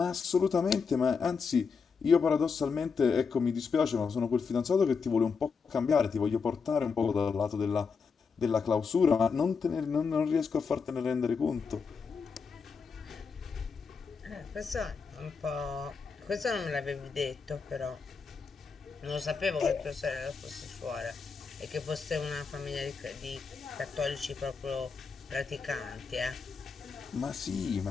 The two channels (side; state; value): right; quieter; 5.4 dB